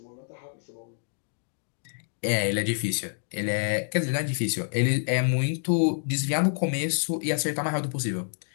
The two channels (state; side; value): silent; right; digital silence